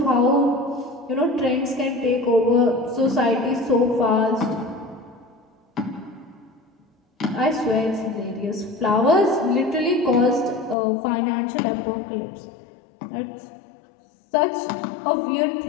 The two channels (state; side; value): drops out; right; at 10.8 s